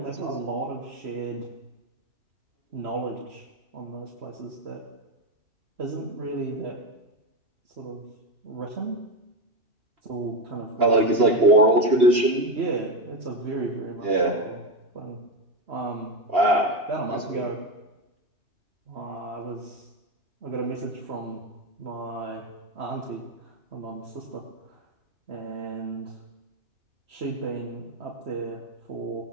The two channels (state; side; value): late; left; 2.8 ms